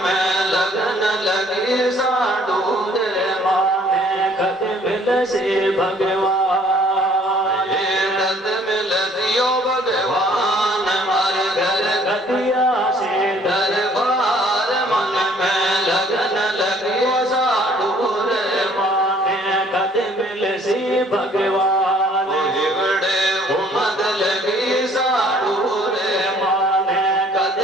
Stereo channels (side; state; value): both; normal; correlation 0.58